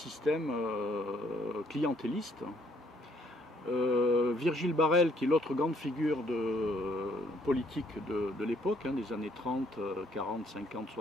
clientéliste. Virgile Barrel, qui est l'autre grande figure politique de l'époque, des années 30, 40, 50,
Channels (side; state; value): both; normal; correlation 0.66